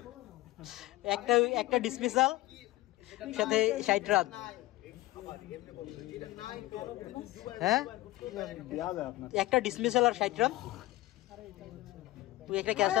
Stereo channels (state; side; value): quieter; right; 18.5 dB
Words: একটা ডিসমিসাল সাথে 60 রান হ্যাঁ একটা ডিসমিসাল আর 60 রান তুই একটা ক্যাচ